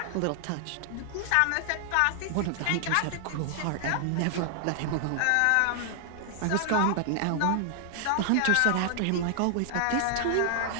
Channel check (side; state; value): both; different; correlation 0.00